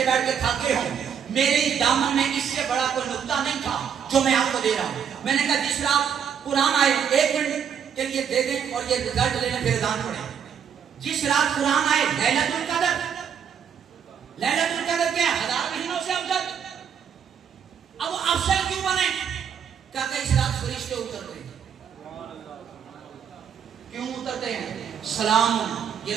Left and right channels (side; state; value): left; quieter; 7.8 dB